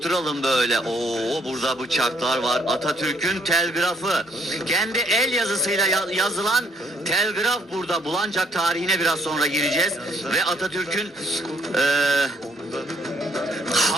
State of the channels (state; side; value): normal; both; correlation 0.67